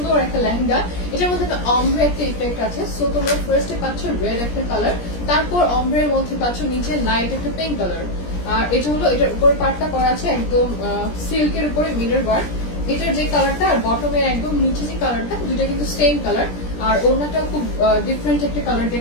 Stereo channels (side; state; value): right; late; 17 ms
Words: একটা লেহেঙ্গা। এটার মধ্যে একটা অমব্রে একটা ইফেক্ট আছে। সো তোমরা ফার্স্টে পাচ্ছ রেড একটা কালার, তারপর অমব্রের মধ্যে পাচ্ছ নিচে লাইট একটা পিঙ্ক কালার। আর এটা হলো এটার উপরে পার্টটা করা আছে একদম সিল্কের উপরে মিরর ওয়ার্ক। এটার যে কালারটা আর বটমের একদম নিচে যে কালারটা দুইটা কিন্তু সেম কালার। আর ওড়নাটাও খুব ডিফারেন্ট একটা কালার